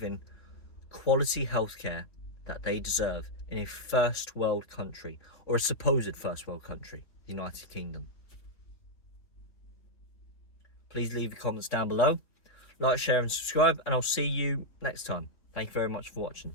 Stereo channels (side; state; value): right; late; 3.5 ms